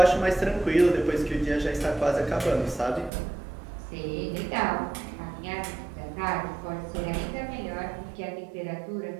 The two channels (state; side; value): drops out; left; at 3.1 s